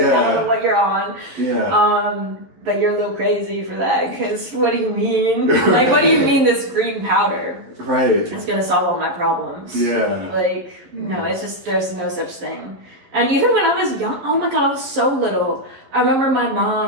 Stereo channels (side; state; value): left; late; 11 ms